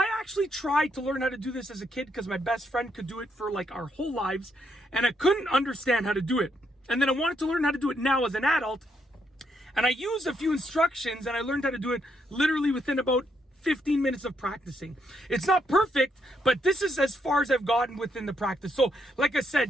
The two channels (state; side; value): normal; both; correlation 0.76